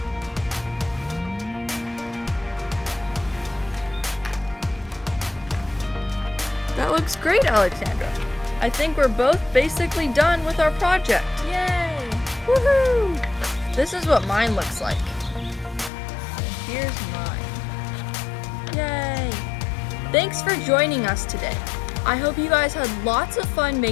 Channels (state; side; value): drops out; right; at 15.9 s